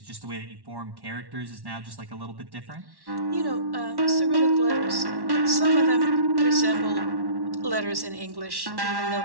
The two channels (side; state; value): left; late; 1.1 ms